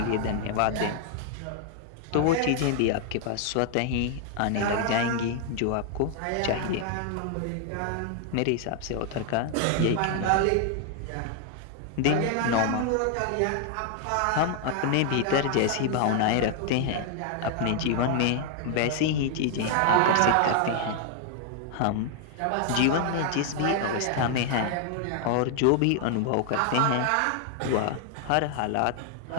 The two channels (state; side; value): different; both; correlation 0.00